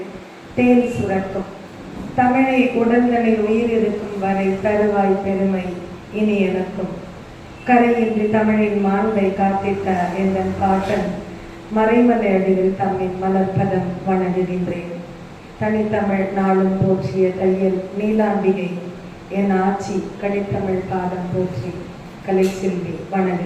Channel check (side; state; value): both; identical; correlation 1.00